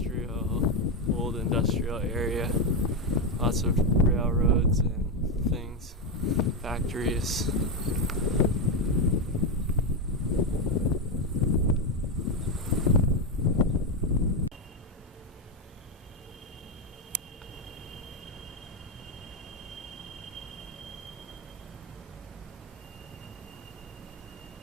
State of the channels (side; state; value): both; normal; correlation 0.08